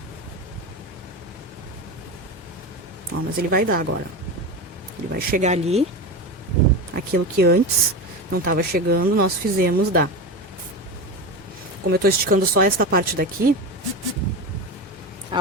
Ó, mas ele vai dar agora. Ele vai chegar ali. Aquilo que antes não estava chegando, nós fizemos dar. Como eu estou esticando só esta parte daqui,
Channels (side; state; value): both; normal; correlation 0.22